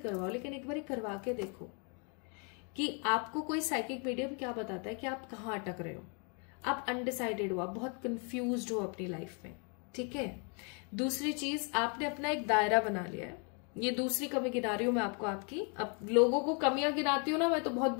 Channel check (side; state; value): right; quieter; 37.0 dB